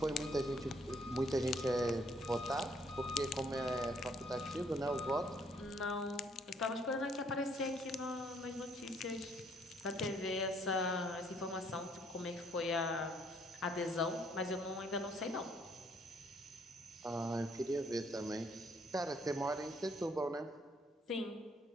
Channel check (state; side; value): normal; both; correlation 0.66